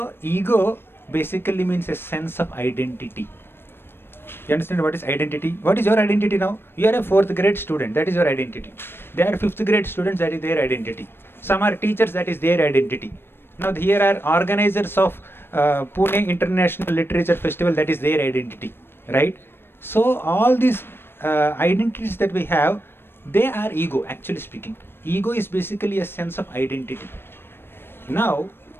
ego basically means a sense of identity. You understand what is identity? What is your identity now? You are a 4th grade student, that is your identity. They are 5th grade students, that is their identity. Some are teachers, that is their identity. Now here are organizers of Pune International Literature Festival, that is their identity, right? So all these identities that we have, they are ego, actually speaking. Ego is basically a sense of identity. Now,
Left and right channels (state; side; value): late; right; 0.11 ms